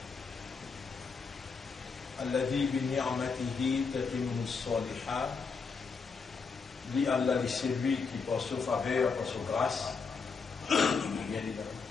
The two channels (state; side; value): quieter; right; 5.1 dB